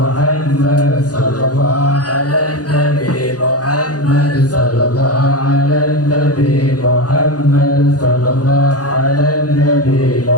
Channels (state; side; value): late; right; 0.68 ms